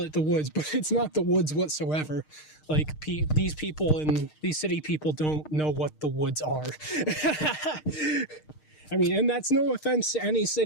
it the woods, but it's not the woods whatsoever. Like, these people and these city people don't know what the woods are. I mean, and that's no offense to any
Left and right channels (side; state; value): right; late; 6.5 ms